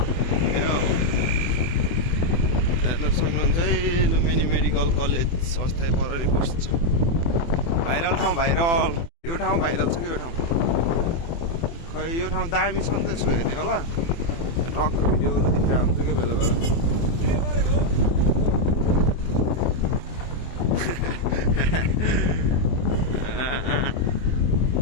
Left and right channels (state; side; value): late; right; 24 ms